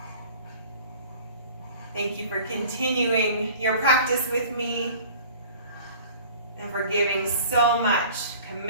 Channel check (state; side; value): inverted; both; correlation -0.45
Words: Thank you for continuing your practice with me and for giving so much